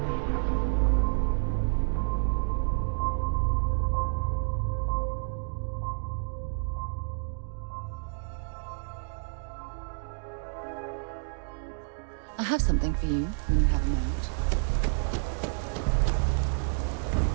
I have something for you when you have a moment.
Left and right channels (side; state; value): left; silent; digital silence